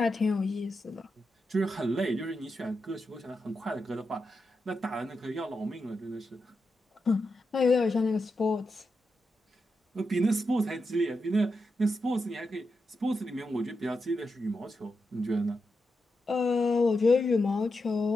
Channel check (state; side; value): normal; both; correlation 0.87